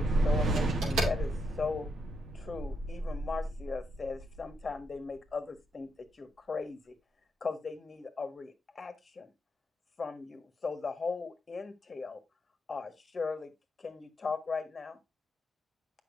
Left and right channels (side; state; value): both; normal; correlation 0.80